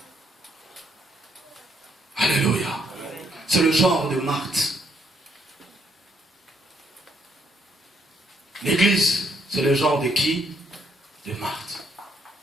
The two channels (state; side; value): normal; both; correlation 0.71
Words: Alléluia. C'est le genre de Marthe. L'église, c'est le genre de qui? De Marthe.